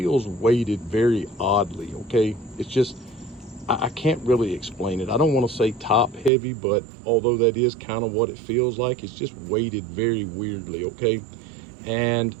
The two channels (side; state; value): left; drops out; at 6.3 s